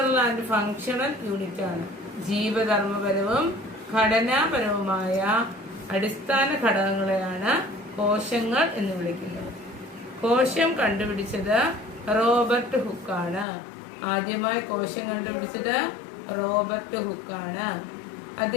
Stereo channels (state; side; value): drops out; right; at 13.5 s